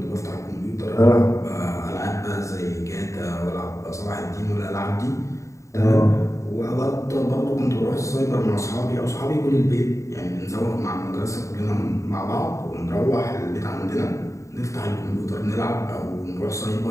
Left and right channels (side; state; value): right; late; 0.15 ms